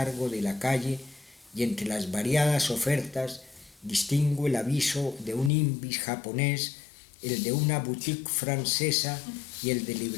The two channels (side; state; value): right; drops out; at 5.5 s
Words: de la calle y entre las variadas ofertas distingo el aviso de un imbis japonés, el de una boutique francesa y el de